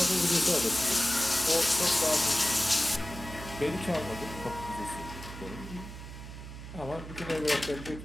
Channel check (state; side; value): noise; right; hum, 12 dB below the sound